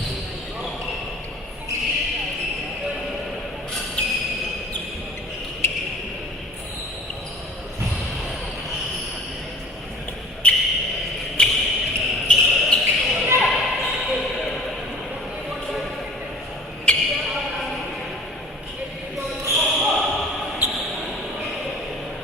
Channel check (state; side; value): normal; both; correlation 0.46